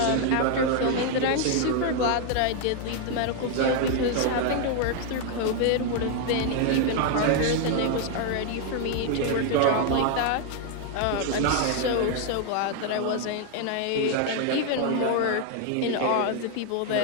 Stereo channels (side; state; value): both; different; correlation 0.00